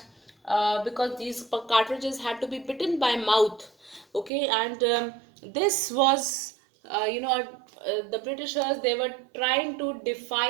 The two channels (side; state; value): left; drops out; at 4.3 s